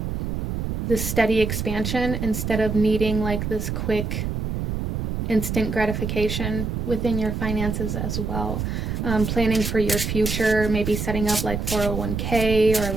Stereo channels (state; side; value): noise; right; rumble, 2 dB below the sound